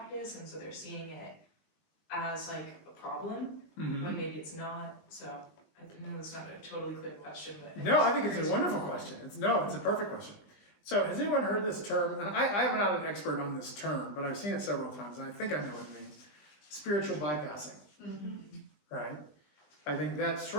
and so they're seeing it as like a problem, but maybe it's not. So I know it's not a totally clear question, but No, I think it's a wonderful question. It's a perfect question. So has anyone heard this term? And I'm not an expert on this term, but I've seen it several times and I think I know what it means. Spiritual bypassing. Right? I think that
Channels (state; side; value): late; right; 20 ms